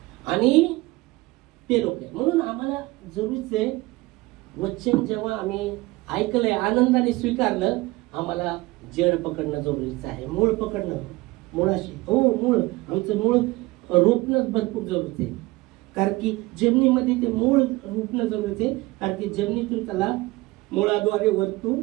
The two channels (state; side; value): quieter; left; 20.9 dB